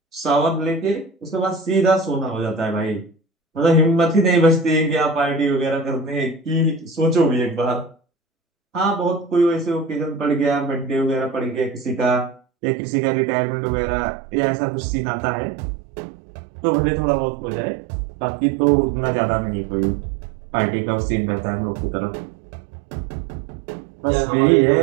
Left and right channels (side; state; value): left; drops out; at 12.4 s